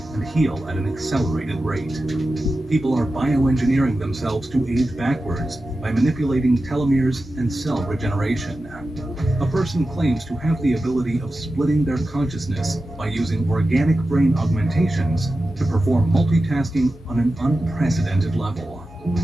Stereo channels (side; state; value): both; normal; correlation 0.93